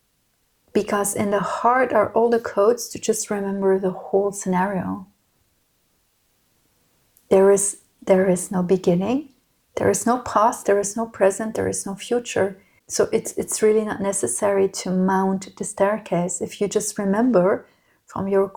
because in the heart are all the codes to just remember the whole scenario. There is no beginning, there is no past, there is no present, there is no future. So it's really not necessary to mount the staircase. If you just remember from your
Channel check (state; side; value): identical; both; correlation 1.00